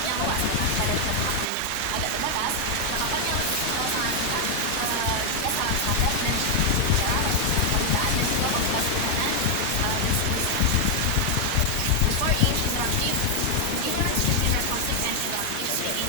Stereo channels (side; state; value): both; different; correlation 0.00